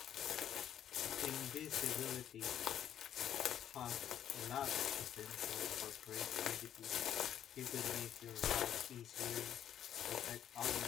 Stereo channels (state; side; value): quieter; right; 10.3 dB